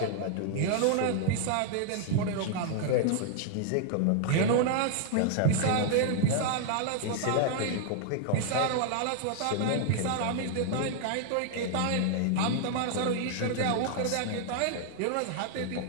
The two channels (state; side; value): different; both; correlation 0.00